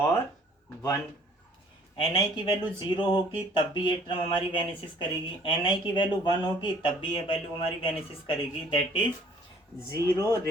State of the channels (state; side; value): normal; both; correlation 0.56